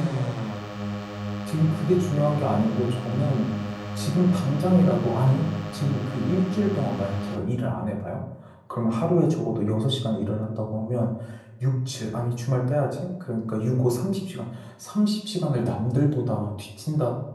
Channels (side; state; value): both; identical; correlation 1.00